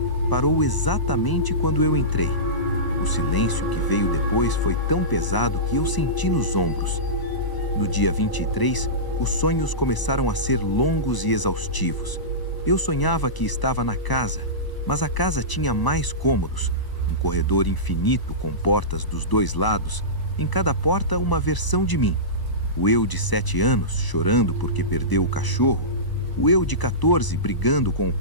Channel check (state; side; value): late; right; 1.0 ms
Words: Parou exatamente quando eu entrei. O silêncio que veio depois foi tão pesado que eu senti nos ombros. No dia 23, os sonhos começaram a ser longos e exaustivos. Eu sonhava que estava na casa, mas a casa tinha mais cômodos, um corredor infinito com portas dos dois lados, em cada porta uma versão de mim. O eu de 7 anos, chorando porque perdeu o cachorro, o eu de 14 brigando com o